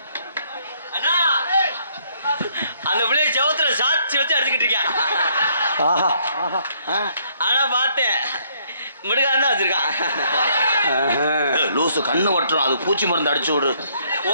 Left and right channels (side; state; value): both; inverted; correlation -0.67